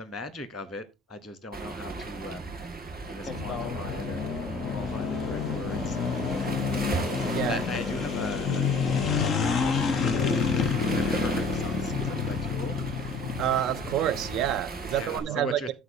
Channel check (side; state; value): both; normal; correlation 0.48